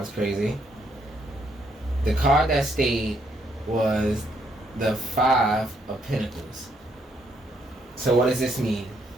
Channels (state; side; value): normal; both; correlation 0.73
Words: crazy. The card that stayed was the 5 of Pentacles. So what does this mean?